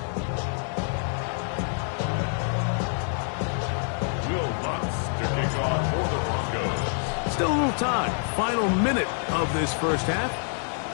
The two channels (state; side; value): silent; right; 57 dB below the other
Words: Still a little time. Final minute of this first half.